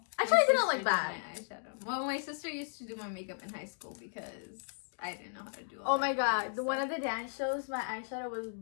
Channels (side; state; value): right; silent; digital silence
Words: Actually, it didn't look bad. My eyeshadow. Well, my sister used to do my makeup in high school because I didn't know how to do all my god, one of the dance shows, my eyeshadow was